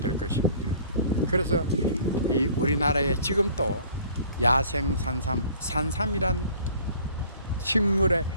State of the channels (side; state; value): both; inverted; correlation -0.52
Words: 될 것입니다. 그래서 이 우리나라에 지금 또 야생 산삼이란 식물의